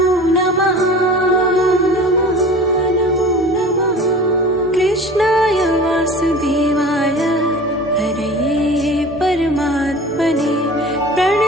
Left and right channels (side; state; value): both; normal; correlation 0.40